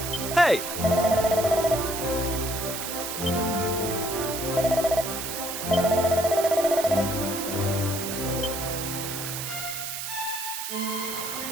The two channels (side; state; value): right; noise; hiss, 5 dB below the sound